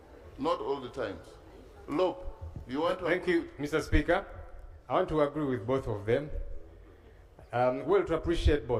not all the times. LOP, you want to... Thank you, Mr. Speaker. I want to agree with both of them. Well, to appreciate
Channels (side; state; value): both; identical; correlation 1.00